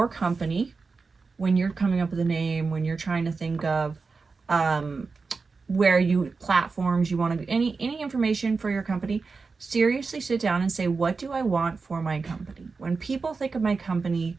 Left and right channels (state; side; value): quieter; left; 4.5 dB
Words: company when you're coming up with a name, when you're trying to think of platforms you want to, any information for your company. Seriously sit down and say, what do I want for my company? When people think of my company,